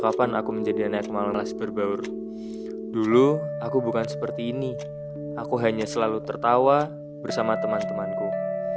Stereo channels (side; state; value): both; identical; correlation 1.00